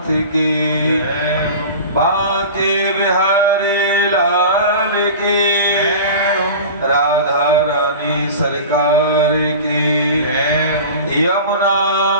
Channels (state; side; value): inverted; both; correlation -0.34